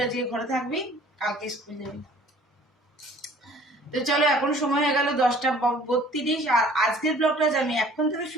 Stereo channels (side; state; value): both; normal; correlation 0.52